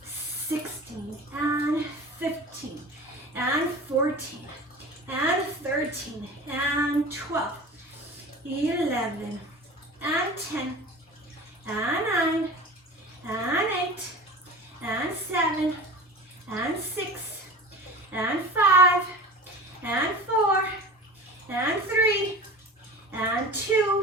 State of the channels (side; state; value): both; normal; correlation 0.36